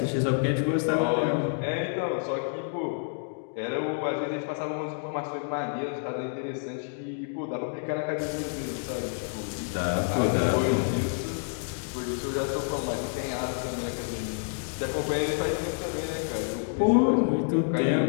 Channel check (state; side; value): silent; right; 59 dB below the other